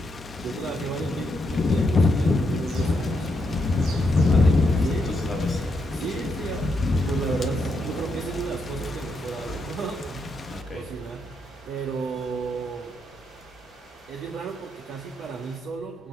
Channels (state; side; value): normal; both; correlation 0.80